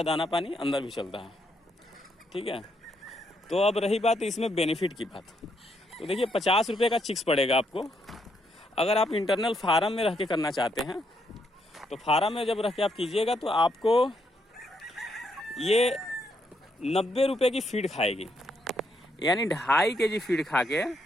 दाना पानी अंदर भी चलता है। ठीक है, तो अब रही बात इसमें बेनिफिट की बात। तो देखिए 50 रुपये का चिक्स पड़ेगा आपको। अगर आप इंटरनल फार्म में रह के करना चाहते हैं, तो फार्म में जब रह के आप कीजिएगा तो आपको ये 90 रुपये की फीड खाएगी, यानी 2.5 kg फीड खा के।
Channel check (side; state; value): both; normal; correlation 0.76